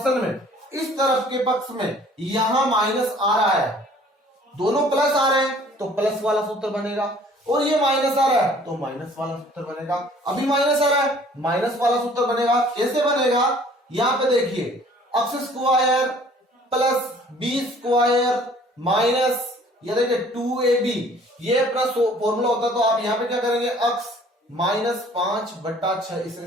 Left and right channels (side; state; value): both; normal; correlation 0.54